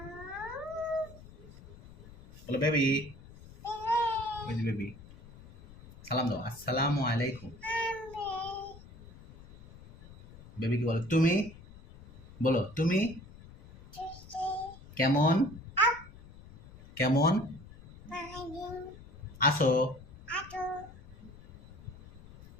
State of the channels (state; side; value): noise; left; rumble, 19 dB below the sound